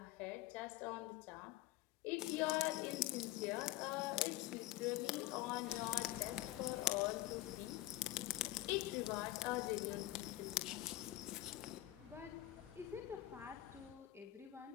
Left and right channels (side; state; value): right; quieter; 16.4 dB